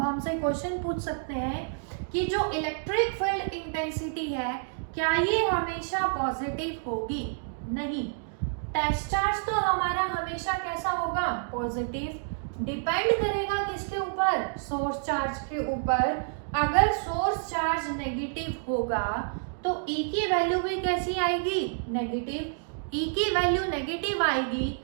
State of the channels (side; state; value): left; silent; digital silence